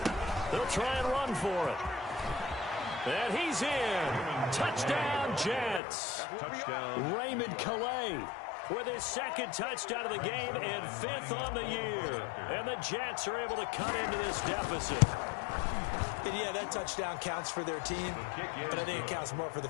They'll try and run for it. And he's in. Touchdown, Jets. Touchdown. Raymond Calais with his 2nd touchdown of the game and 5th on the year. And the Jets are able to cut into this deficit. And yeah, that touchdown counts for their team, but I think it counts more for the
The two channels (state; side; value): drops out; right; at 5.8 s